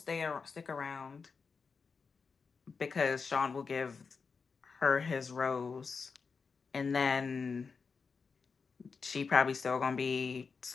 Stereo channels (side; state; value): right; quieter; 5.1 dB